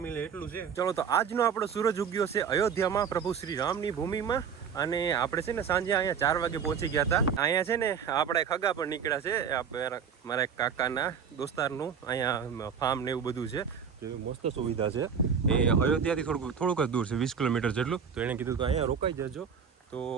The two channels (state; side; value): quieter; left; 7.0 dB